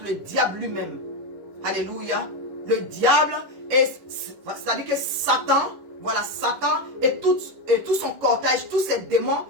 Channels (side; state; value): left; late; 10 ms